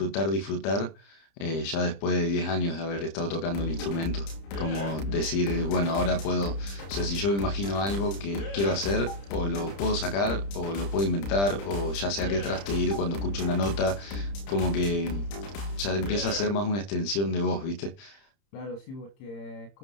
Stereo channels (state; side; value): late; right; 30 ms